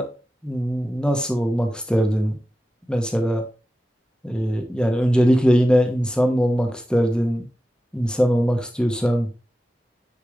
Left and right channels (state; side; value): normal; both; correlation 0.93